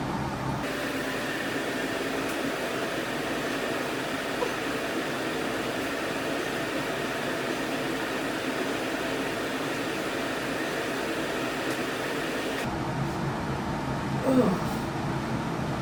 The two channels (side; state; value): both; identical; correlation 1.00